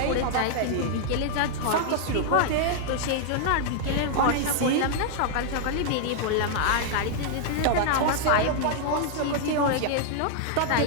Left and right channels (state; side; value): different; both; correlation -0.01